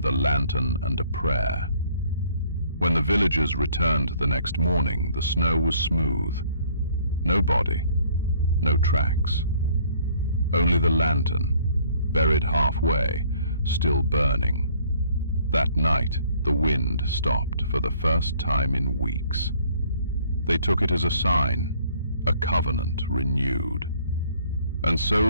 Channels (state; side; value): inverted; both; correlation -0.60